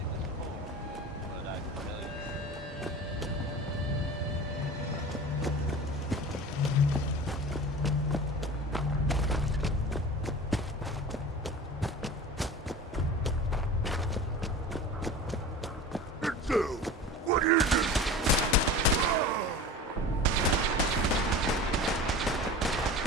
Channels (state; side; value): normal; both; correlation 0.35